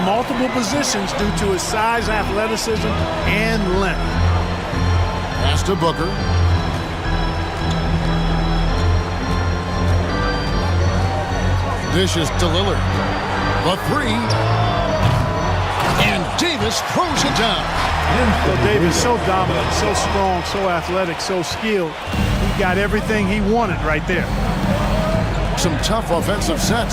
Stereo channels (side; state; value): both; identical; correlation 1.00